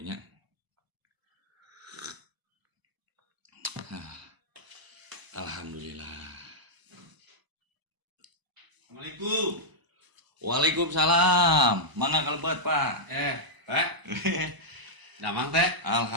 Alhamdulillah. Assalamualaikum. Waalaikumsalam. Mangga kalebet, Pak. Pak. Damang teh.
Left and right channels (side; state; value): left; late; 1.0 ms